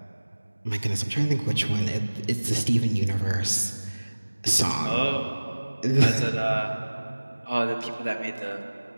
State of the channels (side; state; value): both; inverted; correlation -1.00